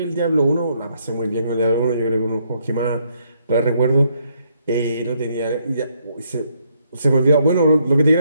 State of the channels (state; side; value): inverted; both; correlation -0.72